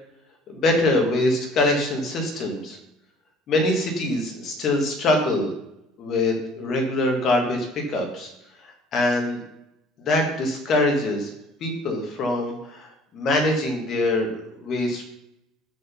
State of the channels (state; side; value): normal; both; correlation 0.53